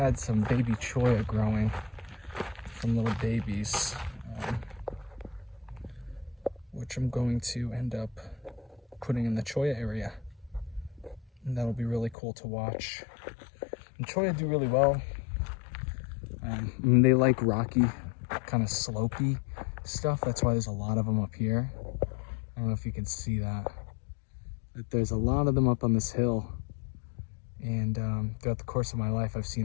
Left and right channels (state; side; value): drops out; right; at 12.2 s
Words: some baby cholla growing, some little babies, which I'm going to end up putting in the cholla area. And that'll be really cool to watch. And cholla do really well. I mean, they like rocky, kind of slopey stuff. That's why there's a lot of them up here. I don't know if you can see that. But there's a lot of them up on this hill. And throughout the course of my life, I've seen